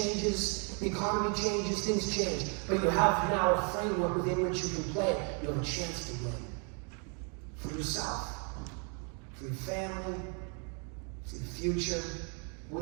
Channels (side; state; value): left; quieter; 38.0 dB